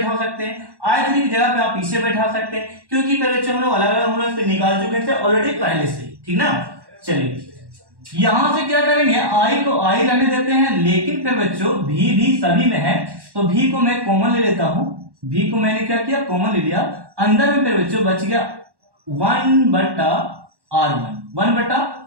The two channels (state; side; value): late; left; 1.1 ms